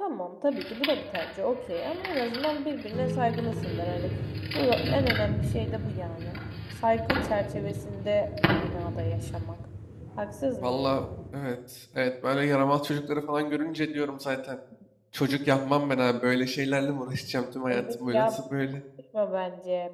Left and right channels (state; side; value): identical; both; correlation 1.00